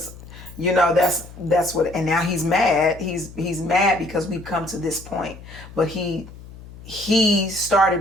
you know, that's what, and now he's mad. He's mad because we've come to this point. But he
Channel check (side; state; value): left; noise; hum, 17 dB below the sound